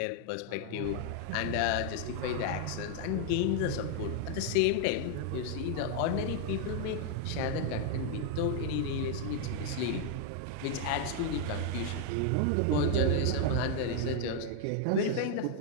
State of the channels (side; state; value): both; different; correlation 0.00